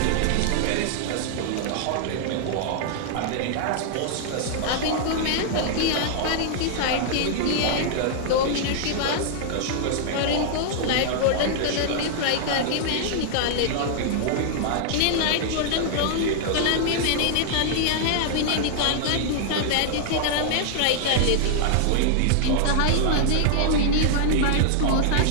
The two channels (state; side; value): different; both; correlation -0.01